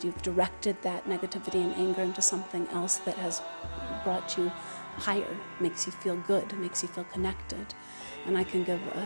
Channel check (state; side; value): inverted; both; correlation -1.00